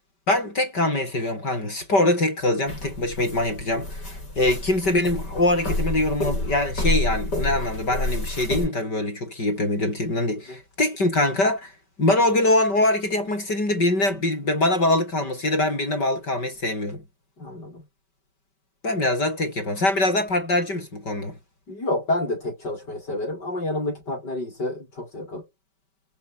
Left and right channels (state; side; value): late; right; 5.2 ms